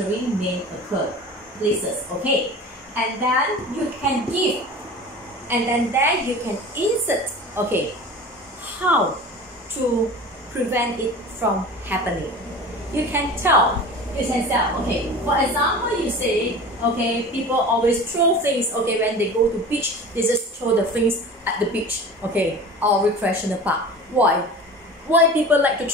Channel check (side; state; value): both; normal; correlation 0.36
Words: may occur, places, okay, and then you can give, and then there you can insert, okay, how to prevent it from happening. You can tell, okay, for example, you say, okay, people always throw things, okay, when they go to beach, they just throw the things at the beach, okay, or recreational park. Why people like to